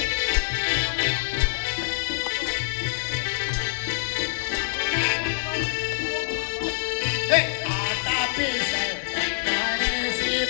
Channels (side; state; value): right; silent; digital silence